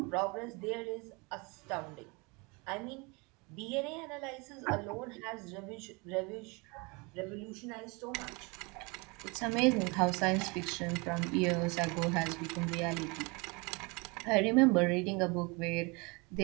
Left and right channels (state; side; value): quieter; left; 28.4 dB